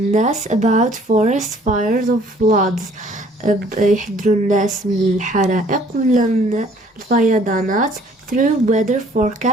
about forest fires or floods يحذروا الناس من الحرائق ولا من الفيضانات through weather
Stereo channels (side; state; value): both; normal; correlation 0.57